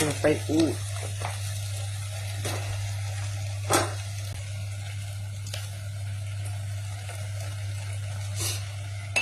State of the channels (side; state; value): both; identical; correlation 1.00